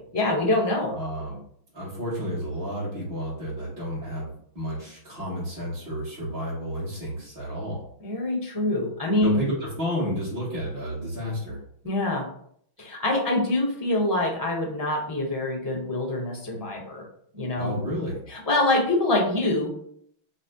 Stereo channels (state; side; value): late; left; 6.1 ms